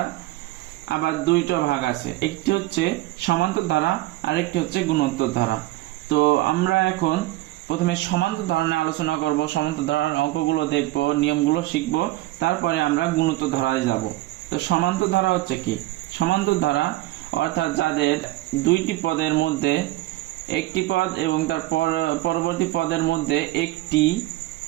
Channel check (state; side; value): quieter; left; 17.8 dB